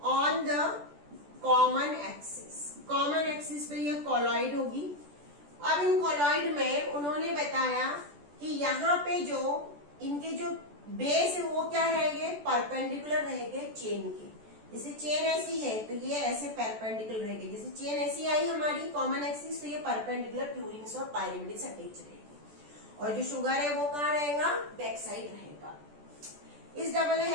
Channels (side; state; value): left; late; 14 ms